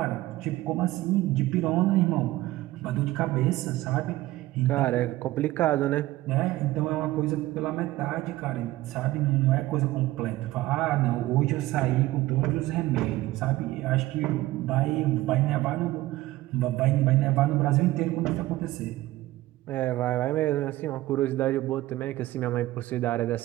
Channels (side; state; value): left; quieter; 17.1 dB